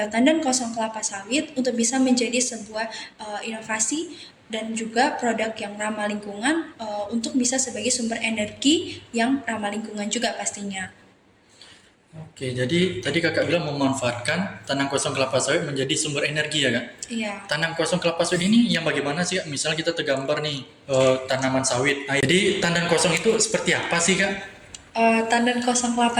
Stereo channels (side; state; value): both; identical; correlation 1.00